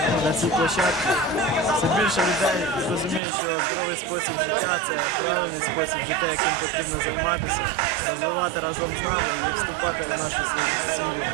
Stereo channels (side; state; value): left; drops out; at 3.2 s